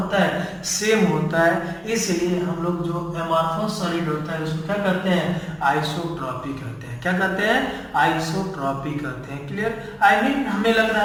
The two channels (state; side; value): identical; both; correlation 1.00